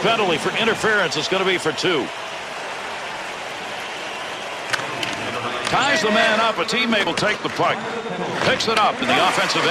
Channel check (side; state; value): both; identical; correlation 1.00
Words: penalty for interference. It's going to be for 2. Ties the man up. A teammate will take the puck. Picks it up in the offensive